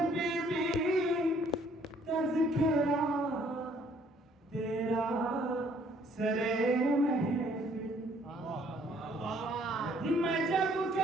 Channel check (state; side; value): normal; both; correlation 0.62